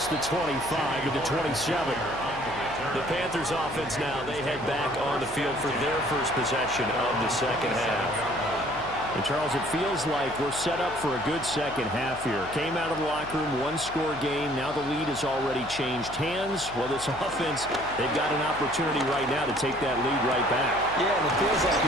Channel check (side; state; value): left; noise; hum, 16 dB below the sound